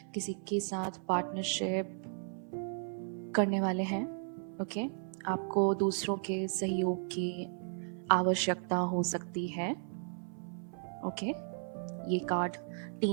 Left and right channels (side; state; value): left; silent; 54 dB below the other